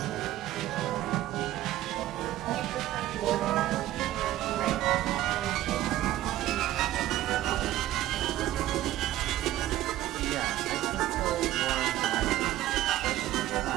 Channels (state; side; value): quieter; left; 14.3 dB